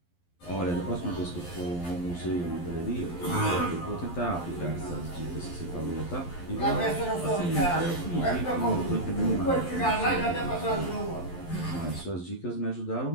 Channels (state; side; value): late; right; 11 ms